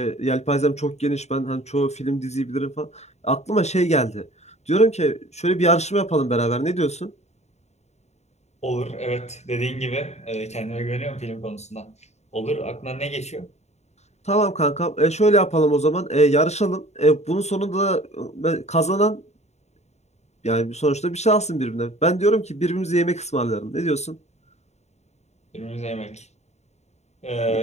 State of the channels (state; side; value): late; right; 0.32 ms